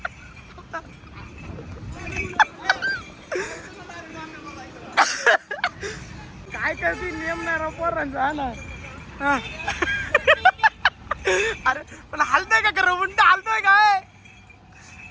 काय करतील नियम नाही राव पोरांचा हा ना हा. अरे पण हलतोय का खरं उंट हलतोय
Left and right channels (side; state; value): both; identical; correlation 1.00